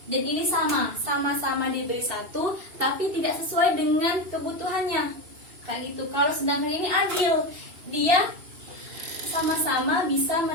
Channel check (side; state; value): left; late; 2.7 ms